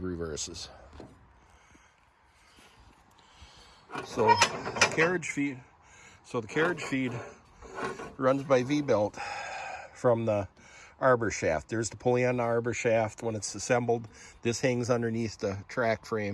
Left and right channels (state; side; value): identical; both; correlation 1.00